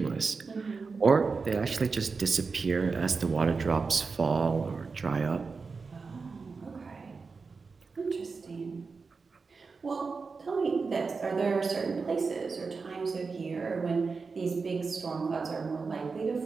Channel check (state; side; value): quieter; left; 4.6 dB